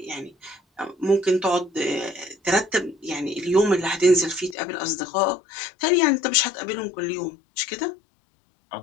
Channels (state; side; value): drops out; right; at 4.5 s